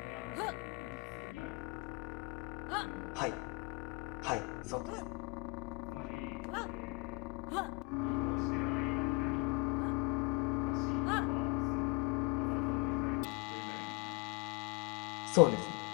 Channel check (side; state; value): right; quieter; 27.8 dB